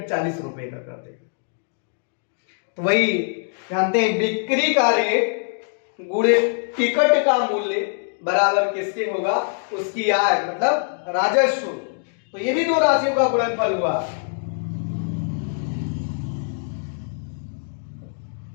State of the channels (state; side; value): silent; right; digital silence